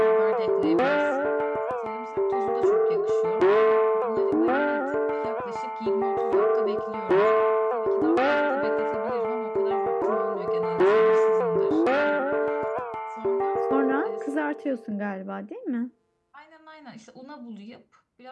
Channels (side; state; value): both; identical; correlation 1.00